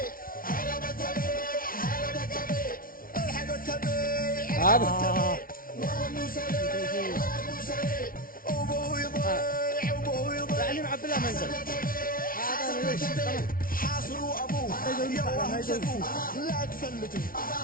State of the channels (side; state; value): right; late; 0.42 ms